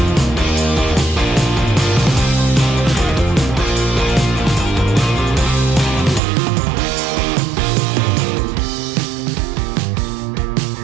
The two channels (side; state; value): left; drops out; at 6.2 s